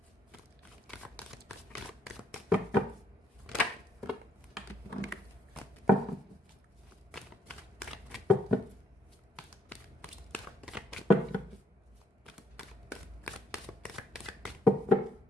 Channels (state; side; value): normal; both; correlation 0.71